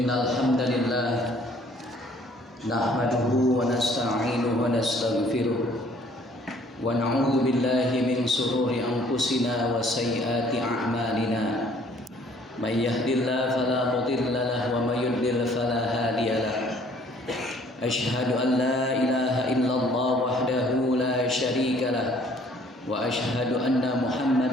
hamdalillah nahmaduhu wa nasta'inuhu wa nastaghfiruh wa na'udzu billahi min shururi anfusina wa sayyiati a'malina. May yahdihillahu fala mudilla lahu wa may yudlil fala hadiya lahu. Asyhadu an la ilaha illallah wahdahu la syarika lahu wa asyhadu anna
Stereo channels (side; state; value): both; normal; correlation 0.58